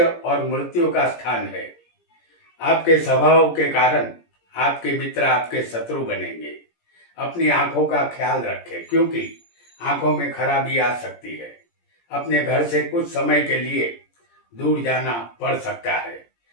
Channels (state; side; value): late; right; 17 ms